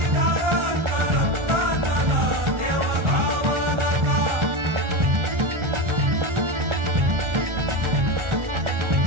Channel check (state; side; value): late; left; 1.4 ms